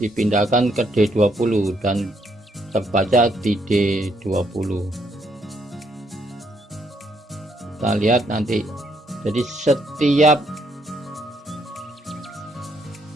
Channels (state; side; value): normal; both; correlation 0.72